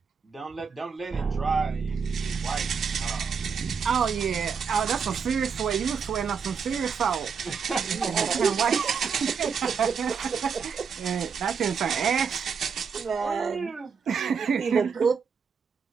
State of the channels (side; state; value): left; quieter; 6.1 dB